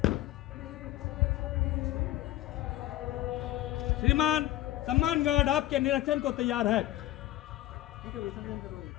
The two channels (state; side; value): quieter; right; 15.1 dB